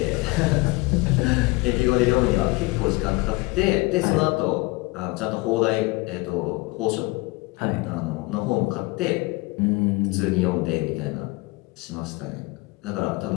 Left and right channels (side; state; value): right; quieter; 23.8 dB